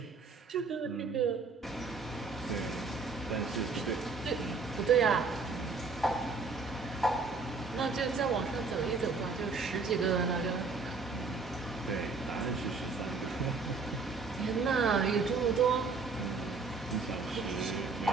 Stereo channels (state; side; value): quieter; left; 4.4 dB